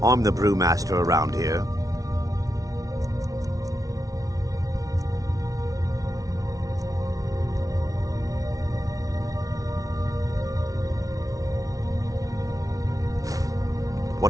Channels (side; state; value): left; late; 0.17 ms